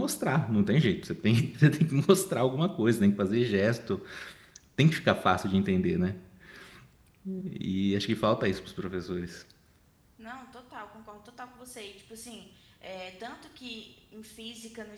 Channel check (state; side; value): identical; both; correlation 1.00